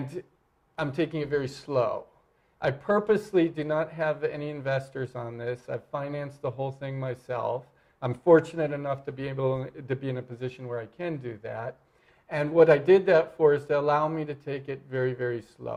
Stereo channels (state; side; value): identical; both; correlation 1.00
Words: I'm taking it very slow. I purposely do not have any investors on this. I've financed the whole thing myself. I'm fortunate enough to be able to be in a position where I can do that. And what I did that for is to allow me to take it very, very